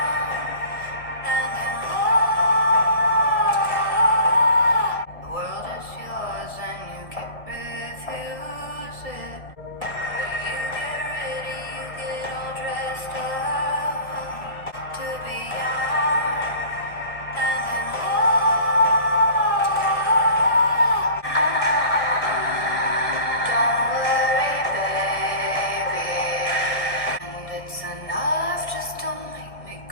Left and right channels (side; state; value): right; late; 1.3 ms